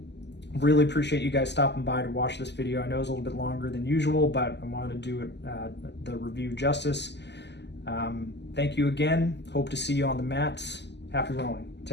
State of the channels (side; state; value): right; late; 0.50 ms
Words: Really appreciate you guys stopping by to watch this video. I know it's a little bit longer than usual, but I wanted to do it the review justice. Thank you again. Hope to see you on the mats. Happy rowing.